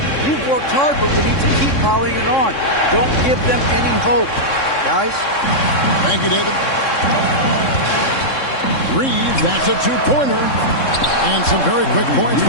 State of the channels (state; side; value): late; right; 3.6 ms